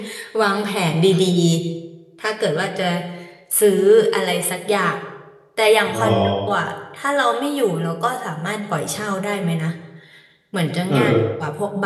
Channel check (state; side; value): identical; both; correlation 1.00